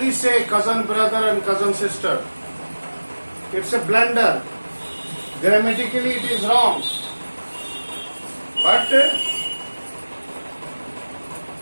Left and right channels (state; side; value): inverted; both; correlation -1.00